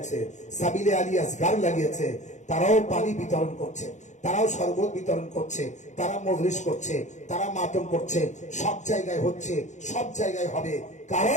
সাবিলে আলী আসগার লাগিয়েছে। তারাও পানি বিতরণ করছে, তারাও শরবত বিতরণ করছে, তারা মজলিস করছে, তারা মাতম করছে। সব জায়গায় হচ্ছে, সব জায়গায় হবে।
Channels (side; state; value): right; late; 0.35 ms